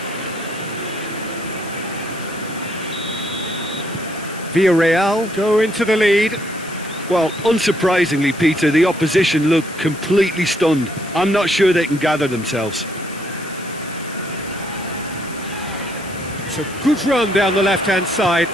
Villarreal go into the lead. Well, unsurprisingly, Peter, the opposition look completely stunned. I'm not sure they can gather themselves. It's a good run down the left-hand side.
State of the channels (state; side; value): noise; left; hiss, 17 dB below the sound